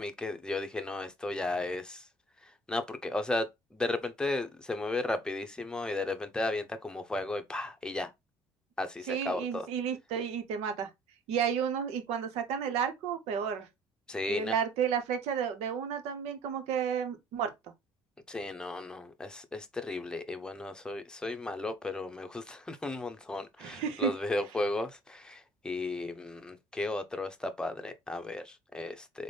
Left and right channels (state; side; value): normal; both; correlation 0.55